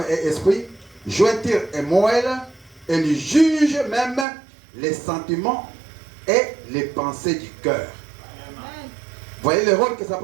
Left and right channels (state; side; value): drops out; left; at 4.2 s